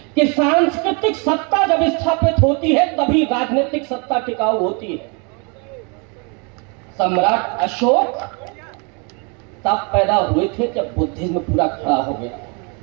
कि सांस्कृतिक सत्ता जब स्थापित होती है तभी राजनीतिक सत्ता टिकाऊ होती है। सम्राट अशोक तब पैदा हुए थे जब बुद्धिज्म पूरा खड़ा हो गया।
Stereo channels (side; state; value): left; quieter; 33.6 dB